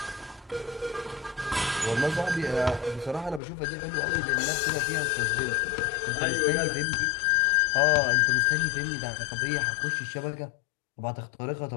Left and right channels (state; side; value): drops out; right; at 3.4 s